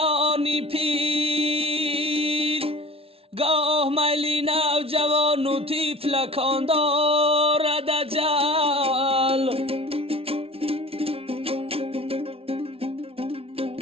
پیر، گاه میلی نوجوان و طفلکان دارد اجل.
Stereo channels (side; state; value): left; late; 0.27 ms